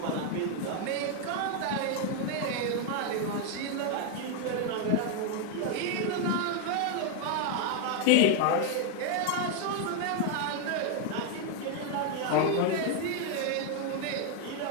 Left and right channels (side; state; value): both; different; correlation 0.01